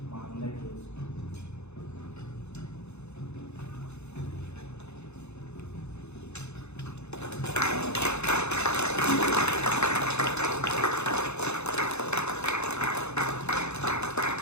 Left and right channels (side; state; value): right; late; 0.81 ms